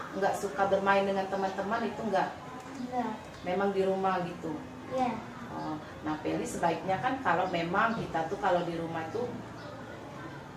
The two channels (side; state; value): both; identical; correlation 1.00